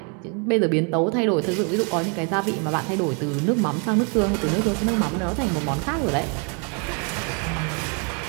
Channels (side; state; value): left; quieter; 37.1 dB